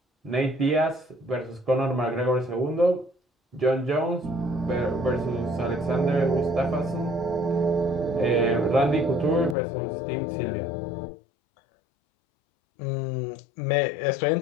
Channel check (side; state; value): right; drops out; at 9.6 s